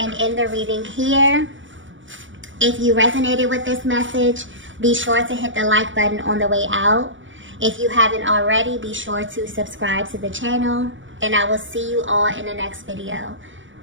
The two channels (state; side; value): late; left; 0.56 ms